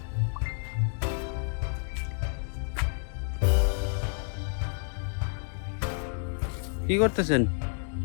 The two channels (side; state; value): right; silent; 57 dB below the other